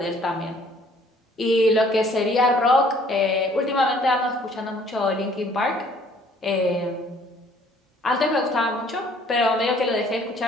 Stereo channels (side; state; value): both; normal; correlation 0.59